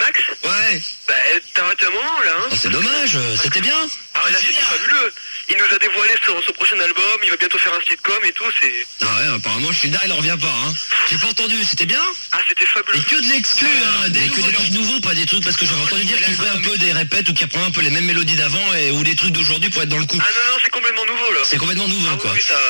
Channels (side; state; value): both; inverted; correlation -1.00